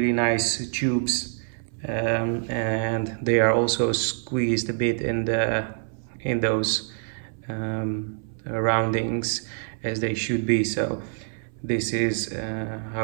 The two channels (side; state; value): left; silent; 60 dB below the other